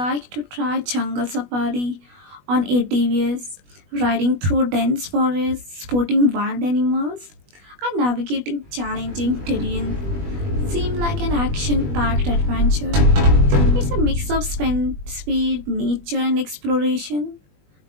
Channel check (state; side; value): late; left; 20 ms